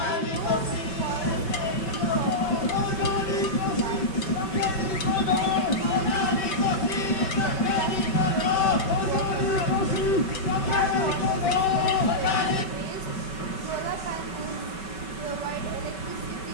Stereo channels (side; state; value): right; late; 5.2 ms